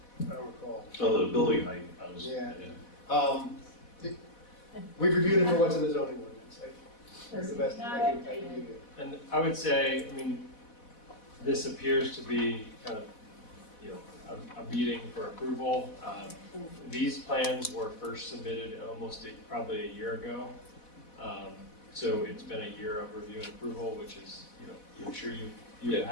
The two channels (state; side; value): late; right; 4.1 ms